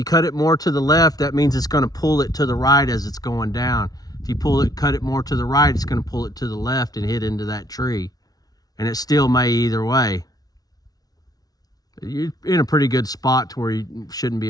cut it more to the left, that means it's going to pull it to the right as it's going down. If you cut it more to the right, it's going to pull it to the left and hit into that tree. And it still may either way. You're in a pretty good spot to where you shouldn't be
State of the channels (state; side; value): late; right; 0.18 ms